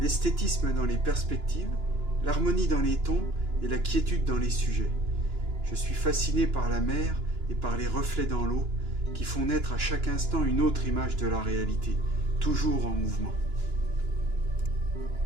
dans les perspectives, l'harmonie dans les tons et la quiétude dans les sujets. Je suis fasciné par la mer et par les reflets dans l'eau qui font naître à chaque instant une autre image de la réalité, toujours en mouvement.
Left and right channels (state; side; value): late; left; 2.9 ms